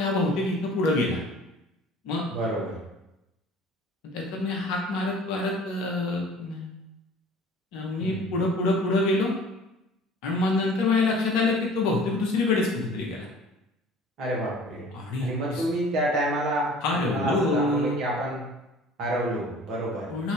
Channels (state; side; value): normal; both; correlation 0.47